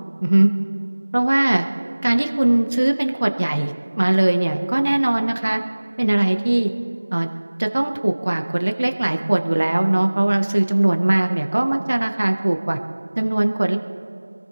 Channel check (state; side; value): inverted; both; correlation -1.00